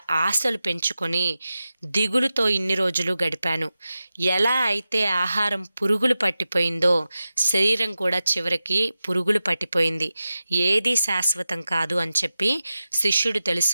ఆశలు పెంచుకొని దిగులుతో ఇన్ని రోజులు గడిపాను. ఎలా అయితే ఆహారం పురుగులు పట్టిపోయిందో శరీరం కూడా చివరికి పురుగులు పట్టిపోయింది. ఏదీ శాశ్వతం కాదు అని చెప్పి శిష్యుడు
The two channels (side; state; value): both; inverted; correlation -0.93